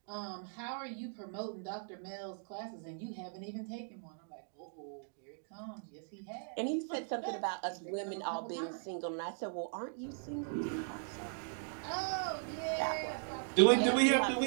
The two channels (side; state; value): left; silent; digital silence